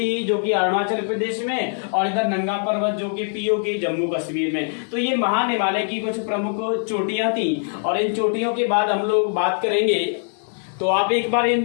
जो कि अरुणाचल प्रदेश में, और इधर नंगा पर्वत जो कि पीओके जम्मू कश्मीर में। तो ये महान हिमालय की कुछ प्रमुख चोटियां थी, और इन चोटियों के बाद हम लोग बात करेंगे। तो आप एक बार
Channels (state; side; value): silent; right; digital silence